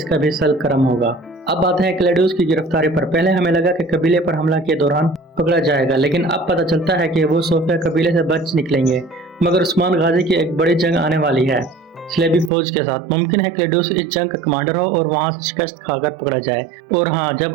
भी सल करम होगा। अब बात है क्लेड्यूस की गिरफ्तारी पर। पहले हमें लगा कि कबीले पर हमला के दौरान पकड़ा जाएगा, लेकिन अब पता चलता है कि वो सोफिया कबीले से बच निकलेंगे। मगर उस्मान गाजी की एक बड़ी जंग आने वाली है स्लेबी फौज के साथ। मुमकिन है क्लेड्यूस इस जंग का कमांडर हो और वहां से शिकस्त खाकर पकड़ा जाए। और हाँ, जब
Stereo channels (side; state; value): left; drops out; at 12.5 s